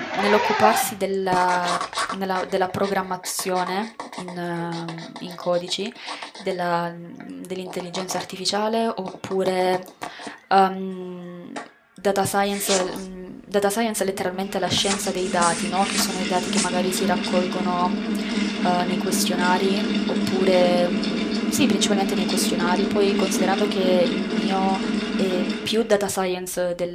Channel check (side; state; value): both; identical; correlation 1.00